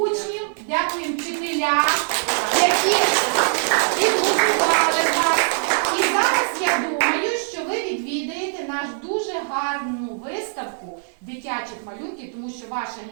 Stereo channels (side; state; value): left; silent; digital silence